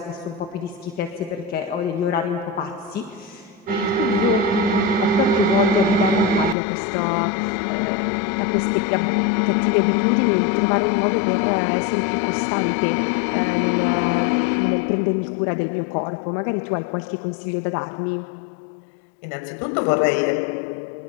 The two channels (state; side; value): drops out; right; at 6.6 s